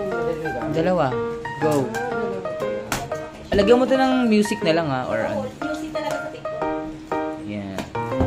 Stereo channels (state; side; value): identical; both; correlation 1.00